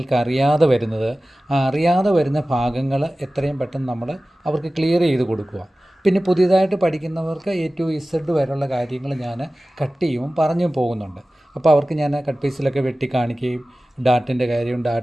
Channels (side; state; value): both; normal; correlation 0.96